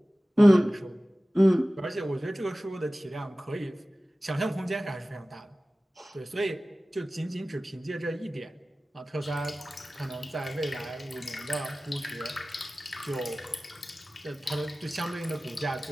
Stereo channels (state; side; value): normal; both; correlation 0.97